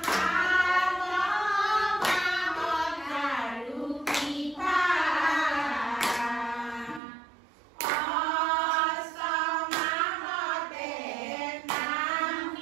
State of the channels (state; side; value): drops out; left; at 7.0 s